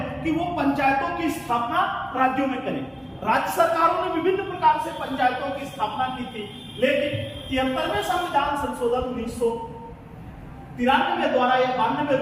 कि वो पंचायतों की स्थापना राज्यों में करें। राज्य सरकारों ने विभिन्न प्रकार से पंचायतों की स्थापना की थी, लेकिन 73वें संविधान संशोधन 1993 द्वारा या 92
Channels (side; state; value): both; identical; correlation 1.00